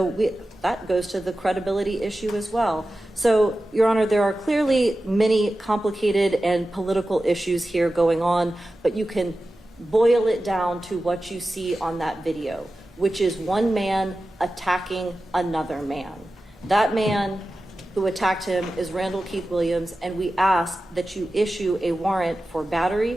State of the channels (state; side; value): normal; both; correlation 0.94